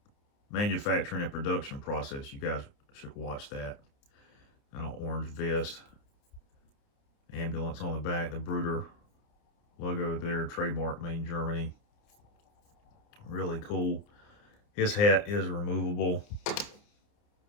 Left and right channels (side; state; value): right; late; 29 ms